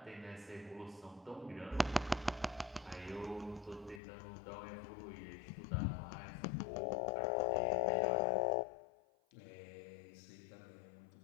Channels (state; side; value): drops out; right; at 4.0 s